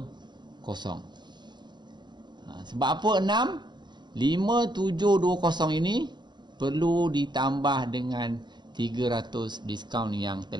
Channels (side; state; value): left; late; 0.21 ms